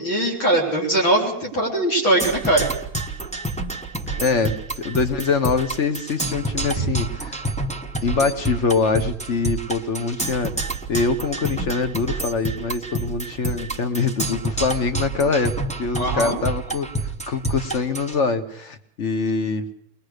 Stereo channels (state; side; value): normal; both; correlation 0.05